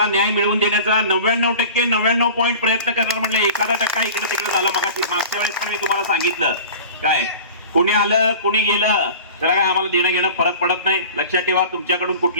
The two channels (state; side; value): inverted; both; correlation -0.39